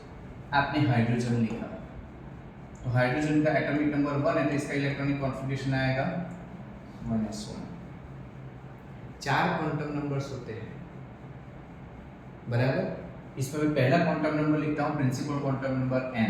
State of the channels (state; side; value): identical; both; correlation 1.00